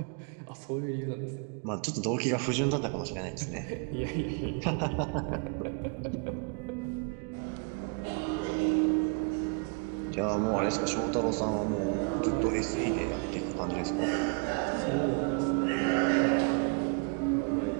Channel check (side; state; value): left; quieter; 35.0 dB